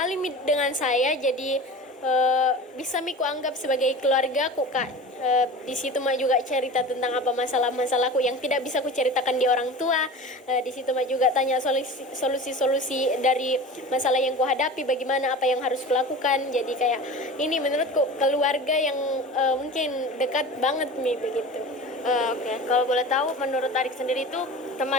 dengan saya, jadi bisa miku anggap sebagai keluargaku Kak. Di situ Mak juga cerita tentang apa masalah-masalahku yang tidak bisa ku ceritakan di orang tua. Di situ Mak juga tanya solusi-solusi dari masalah yang ku hadapi, bagaimana apa yang harus kulakukan. Jadi kayak ini menurutku keluarga yang mungkin dekat banget nih begitu. Oke. Kalau boleh tahu, menurut adik sendiri itu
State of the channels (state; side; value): normal; both; correlation 0.35